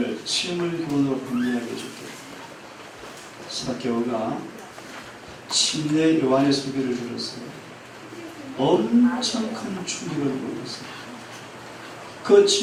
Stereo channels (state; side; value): identical; both; correlation 1.00